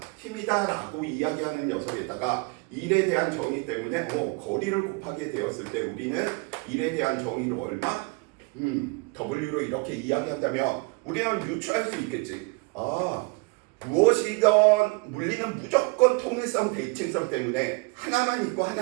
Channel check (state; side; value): quieter; left; 29.2 dB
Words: 라고 이야기하는 녀석에다가 일에 대한 정의 때문에 거리를 곱하게 되었을 때 우리는 일에 대한 정의로 얼마? W로 이렇게 이야기한다면 우리는 유추할 수 있겠지. 무엇이건 물리는 무조건 통일성, 대칭성 때문에 하나만 있고